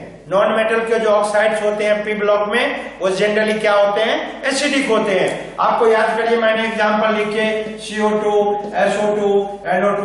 नॉन मेटल के जो ऑक्साइड्स होते हैं पी ब्लॉक में, वो जनरली क्या होते हैं, एसिडिक होते हैं। आपको याद करिए, मैंने एग्जांपल लिख के CO2, SO2,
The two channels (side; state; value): both; identical; correlation 1.00